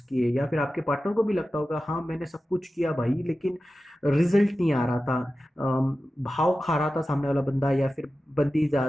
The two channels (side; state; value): both; normal; correlation 0.94